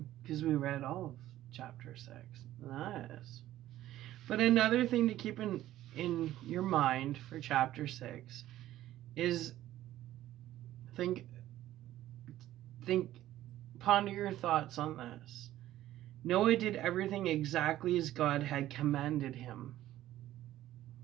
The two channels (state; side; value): quieter; left; 13.9 dB